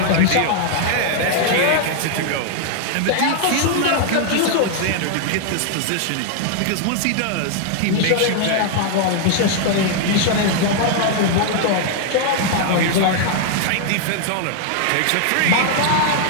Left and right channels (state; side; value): different; both; correlation 0.00